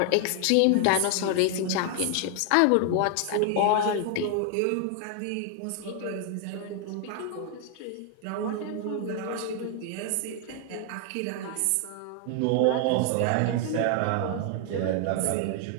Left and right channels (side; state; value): both; different; correlation 0.00